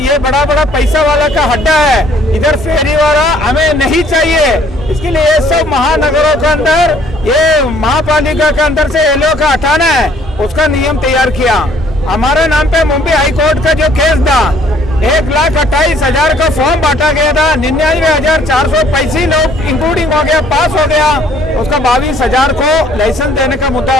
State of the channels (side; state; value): both; normal; correlation 0.60